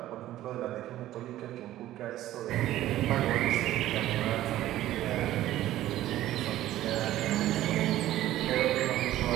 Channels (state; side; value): quieter; left; 14.2 dB